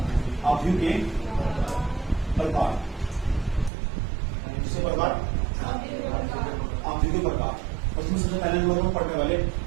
आव्यूह के प्रकार, किसके प्रकार? आव्यूह के प्रकार। और इसमें सबसे पहले नंबर में पढ़ने वाले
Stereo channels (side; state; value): left; drops out; at 3.7 s